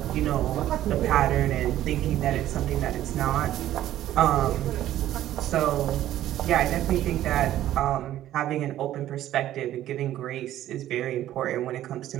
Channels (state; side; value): quieter; left; 13.0 dB